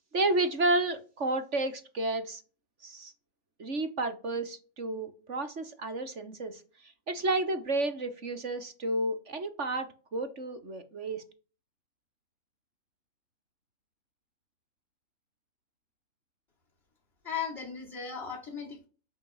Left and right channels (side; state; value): left; late; 3.4 ms